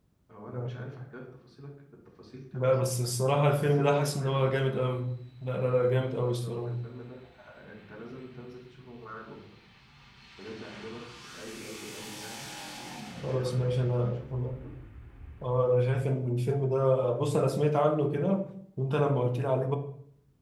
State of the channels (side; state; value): both; identical; correlation 1.00